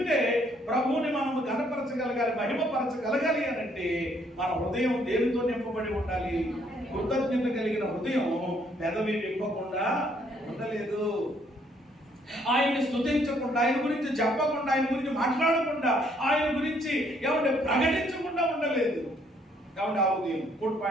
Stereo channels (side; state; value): both; normal; correlation 0.67